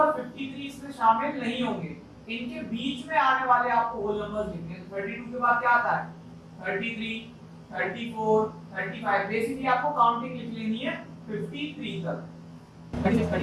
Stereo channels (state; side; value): identical; both; correlation 1.00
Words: 53 इसमें शामिल नहीं होंगे, इनके बीच में आने वाले आपको होल नंबर्स लिखने हैं। 32 के बाद क्या आता है? 33, 34, 35। बेसिकली आपको काउंटिंग लिख लेनी है 53 तक। 36,